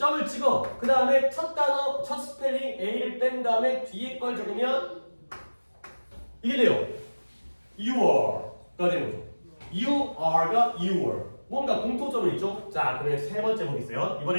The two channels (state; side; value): inverted; both; correlation -1.00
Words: 찍어. 그 다음에 첫 단어, 첫 스펠링 A를 뺀 다음에 뒤에 걸 적으면 이게 돼요. You are가 되는 거죠. You are가 you were. 뭔가 공통점은 있죠? 자, 그러면 세 번째 보겠어요.